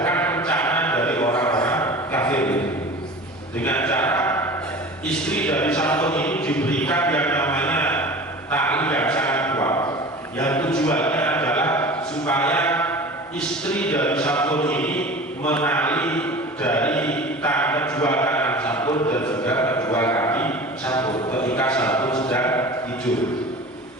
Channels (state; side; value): normal; both; correlation 0.37